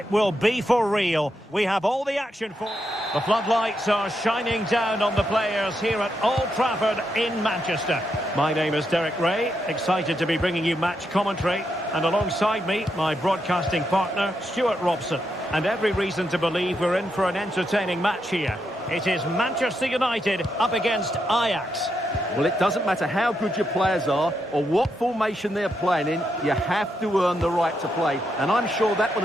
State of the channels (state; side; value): normal; both; correlation 0.82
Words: will be for real. We have all the action for... The floodlights are shining down on the players here at Old Trafford in Manchester. My name is Derek Ray, excited to be bringing you match commentary, and alongside me, my broadcasting partner, Stuart Robson. And every reason to believe we're in for an entertaining match here. It is Manchester United up against Ajax. Well, it doesn't matter how good your players are or what formation they're playing in, you have to earn the right to play. And I'm sure that would